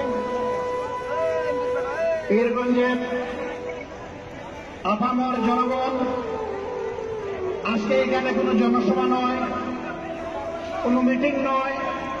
পীরগঞ্জের আপামর জনগণ, আজকে এখানে কোনো জনসভা নয়, কোনো মিটিং নয়,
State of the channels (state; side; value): identical; both; correlation 1.00